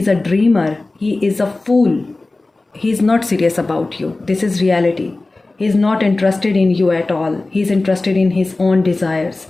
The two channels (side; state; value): right; quieter; 3.2 dB